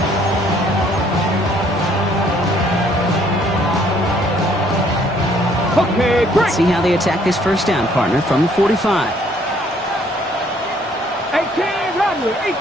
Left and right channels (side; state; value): both; normal; correlation 0.63